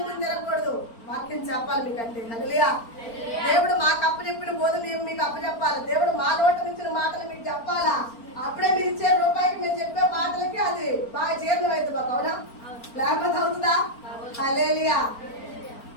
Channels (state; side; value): late; right; 4.4 ms